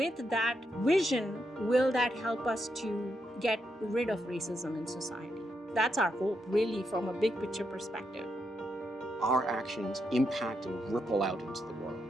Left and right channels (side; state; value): both; normal; correlation 0.82